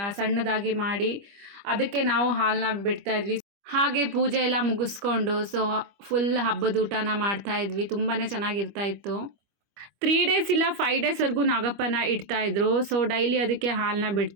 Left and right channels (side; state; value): left; late; 25 ms